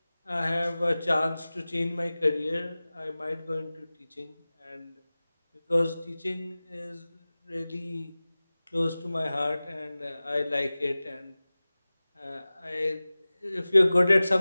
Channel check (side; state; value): both; inverted; correlation -0.98